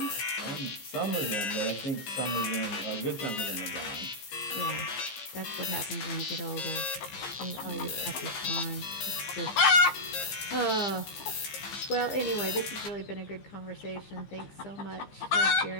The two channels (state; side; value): late; right; 15 ms